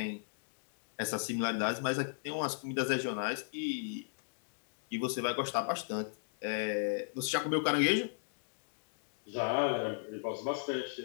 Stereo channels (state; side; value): silent; right; digital silence